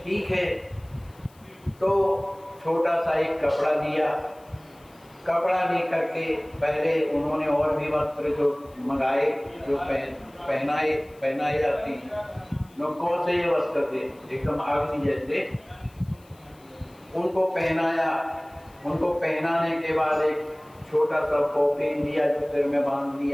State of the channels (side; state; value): left; noise; hiss, 29 dB below the sound